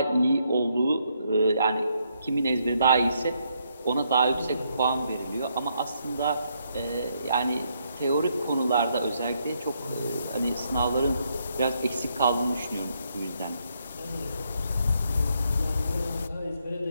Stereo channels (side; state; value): both; inverted; correlation -0.75